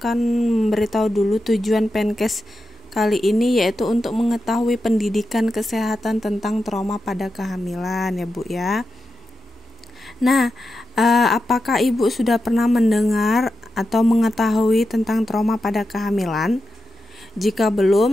memberitahu dulu tujuan Penkes kali ini, yaitu untuk mengetahui pendidikan kesehatan tentang trauma pada kehamilan ya Bu ya. Nah, apakah Ibu sudah pernah mendengar atau mengetahui tentang trauma pada kehamilan? Jika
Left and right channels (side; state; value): both; normal; correlation 0.89